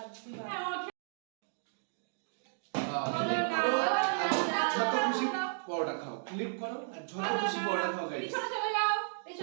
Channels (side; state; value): left; silent; digital silence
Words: দিবা। হলো না। যত খুশি পরোটা খাও, ফ্লিপ করো আর যত খুশি পরোটা খাও গাইস। পিছনে চলে যাও।